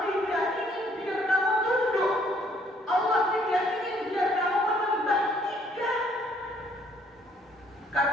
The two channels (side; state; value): both; normal; correlation 0.64